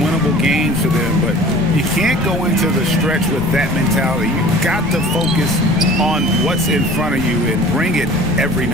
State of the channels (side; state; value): left; noise; rumble, 10 dB below the sound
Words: games for them, but you can't go into the stretch with that mentality. You've got to focus on what's in front of you and bring it every